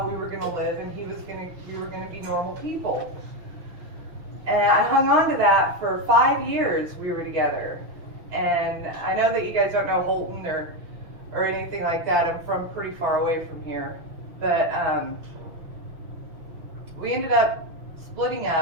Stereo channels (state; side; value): late; left; 6.1 ms